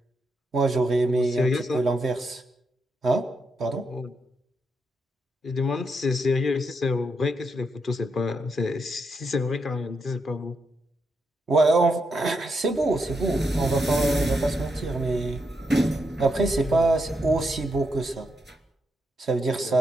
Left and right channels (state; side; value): normal; both; correlation 0.81